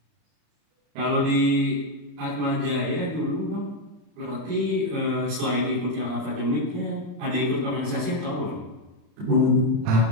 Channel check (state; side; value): late; left; 34 ms